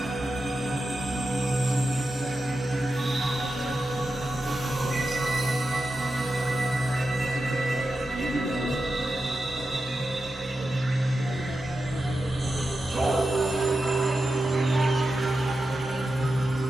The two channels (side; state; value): both; normal; correlation 0.90